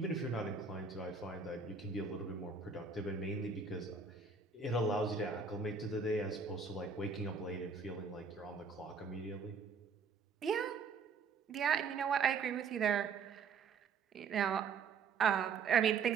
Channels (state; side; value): quieter; left; 5.2 dB